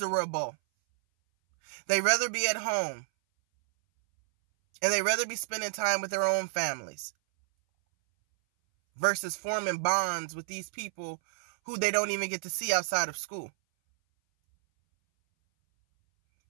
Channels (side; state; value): left; silent; 58 dB below the other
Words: They rather be at home. And they rather be spending time with their own families versus forming bonds with these people who they don't even get to see outside of school.